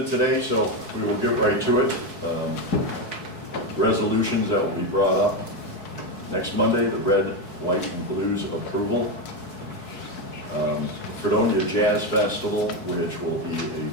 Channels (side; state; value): right; late; 4.7 ms